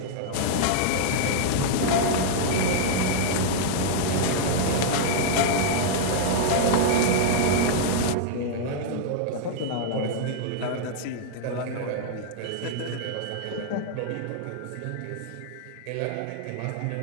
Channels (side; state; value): both; different; correlation -0.01